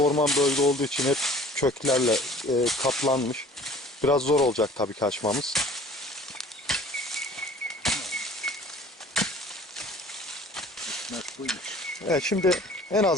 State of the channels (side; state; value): both; normal; correlation 0.49